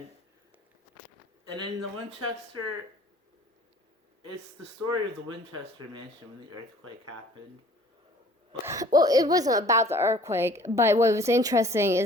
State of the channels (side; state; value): both; normal; correlation 0.53